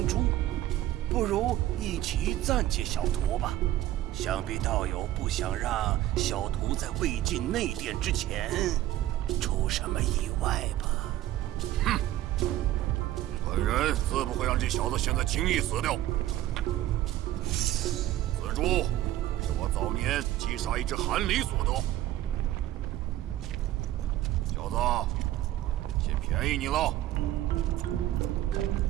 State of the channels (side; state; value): left; quieter; 14.1 dB